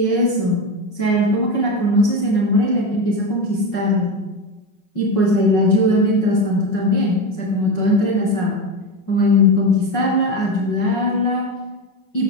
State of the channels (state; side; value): late; right; 5.4 ms